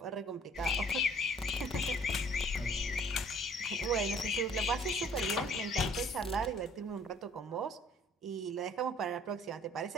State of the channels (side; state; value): both; normal; correlation 0.56